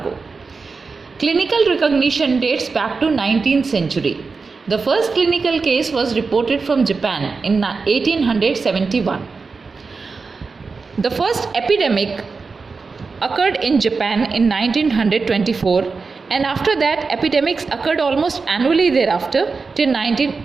Clinical recognition dates back to 19th century. The first clinical case was reported from Japan in 1871. The first epidemic occurred in Japan in 1924, and after that epidemics occurred almost annually thereafter till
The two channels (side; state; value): left; quieter; 4.5 dB